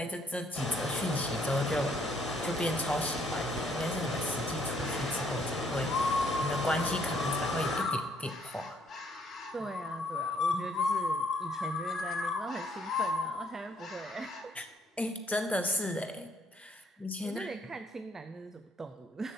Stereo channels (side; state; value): both; normal; correlation 0.67